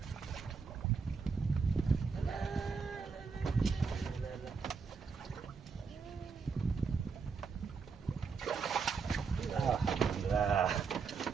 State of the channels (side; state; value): left; quieter; 5.2 dB